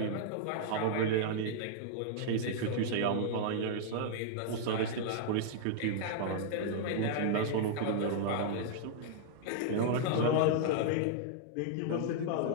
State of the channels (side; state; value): both; different; correlation -0.01